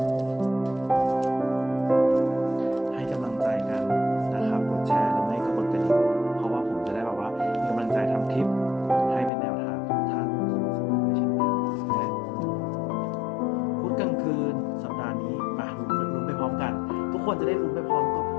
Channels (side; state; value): right; drops out; at 9.3 s